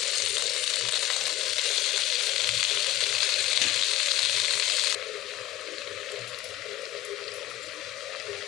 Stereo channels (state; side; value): quieter; right; 14.3 dB